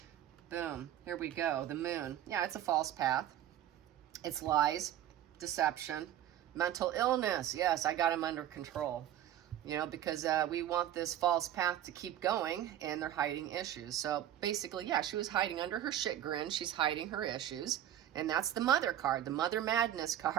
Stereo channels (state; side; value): quieter; left; 11.6 dB